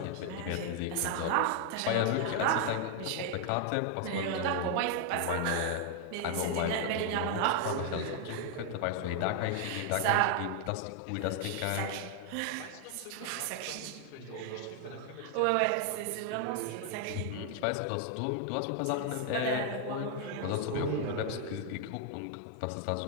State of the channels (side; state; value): both; different; correlation 0.00